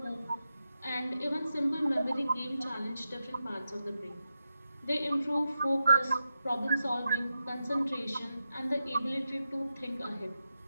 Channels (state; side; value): inverted; both; correlation -0.89